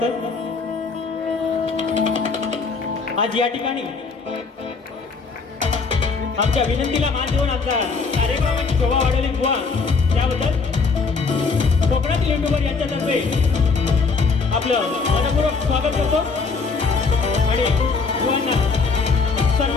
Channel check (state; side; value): quieter; right; 4.6 dB